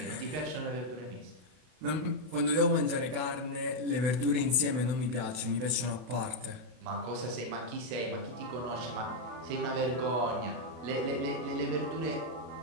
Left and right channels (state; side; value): late; left; 32 ms